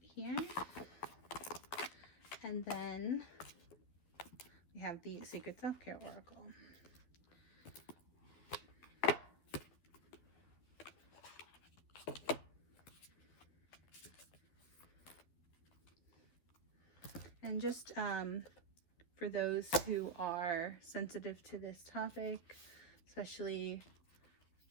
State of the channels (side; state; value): right; late; 12 ms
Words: here. And then we have the Sacred Self-Care Oracle. And just for those who are sensitive to this topic, especially